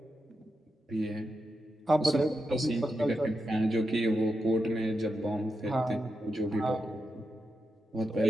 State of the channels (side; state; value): both; normal; correlation 0.87